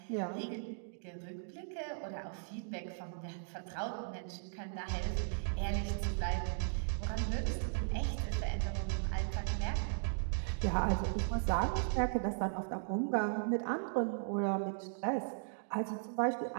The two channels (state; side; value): silent; left; digital silence